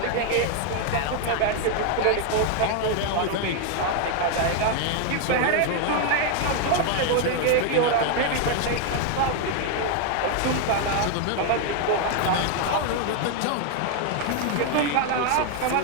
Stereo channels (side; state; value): both; different; correlation 0.01